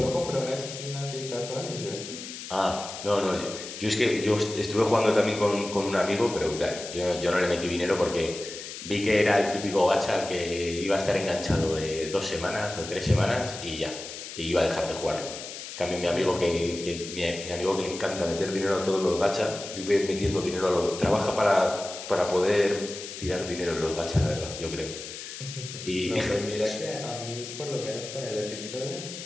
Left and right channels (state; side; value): noise; left; hiss, 10 dB below the sound